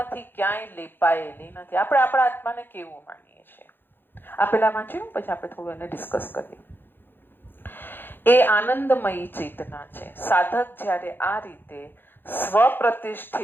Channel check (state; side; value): late; right; 0.099 ms